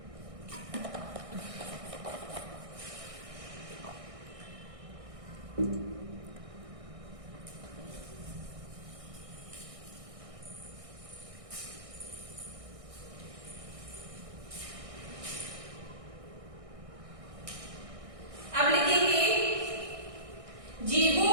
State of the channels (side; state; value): left; late; 1.6 ms